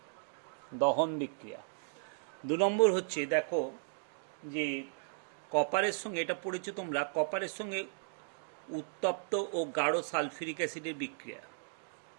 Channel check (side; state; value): left; silent; digital silence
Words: দহন বিক্রিয়া। 2 নম্বর হচ্ছে দেখো যে কপারের সঙ্গে, এটা পড়েছো তোমরা, কপারের সঙ্গে উত্তপ্ত ও গাঢ় সালফিউরিক অ্যাসিডের বিক্রিয়া,